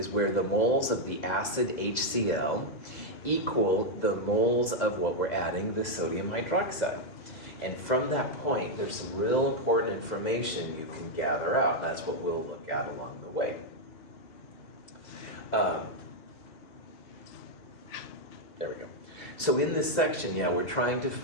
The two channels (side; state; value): right; late; 2.0 ms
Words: where the moles of the acid HCl equal the moles of what we're adding, the sodium hydroxide. And from that point, there's some real important information you can gather out, and that's what we'll look at along the way. There we go. So in this section, we're trying to